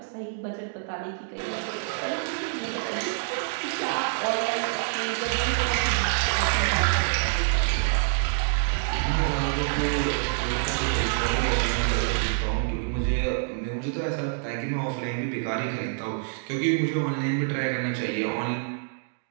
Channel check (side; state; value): left; silent; 60 dB below the other